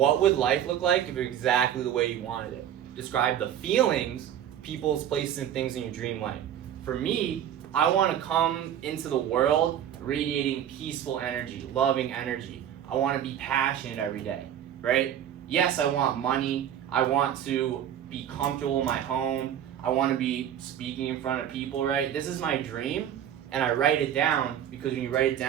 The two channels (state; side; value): quieter; left; 10.1 dB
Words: would life look like if it was exactly the way you wanted it? Describe the feelings, people's places, and things in your dream life. For me, I want to come into the world radiating peaceful energy, loving energy. I want to be passionate every day, right? Yes, I want money. I want to be comfortable in my home. I want to be speaking in front of people, right? This is my dream, and I write it down, because when you write it